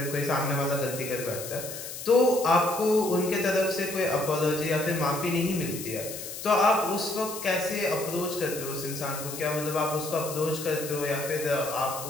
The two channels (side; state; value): left; noise; hiss, 9 dB below the sound